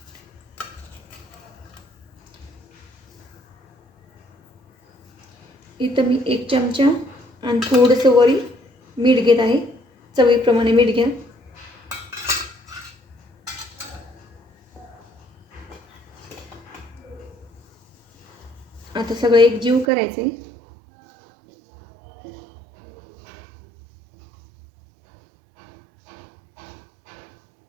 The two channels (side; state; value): left; drops out; at 19.9 s